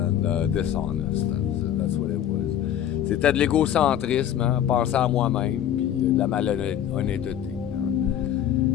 dishonest. That's what it was. C'était de l'égocentrisme, hein, penser à moi-même, puis la malhonnêteté.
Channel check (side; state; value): right; quieter; 10.5 dB